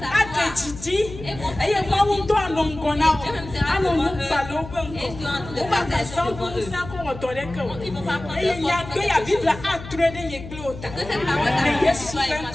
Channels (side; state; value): left; noise; hum, 13 dB below the sound